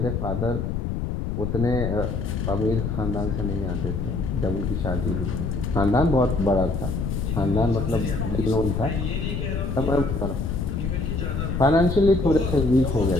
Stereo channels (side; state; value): left; noise; rumble, 2 dB below the sound